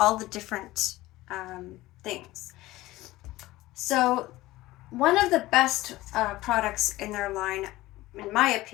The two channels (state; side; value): quieter; right; 17.8 dB